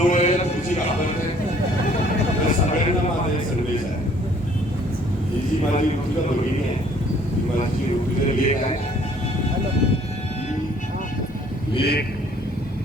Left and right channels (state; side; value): normal; both; correlation 0.59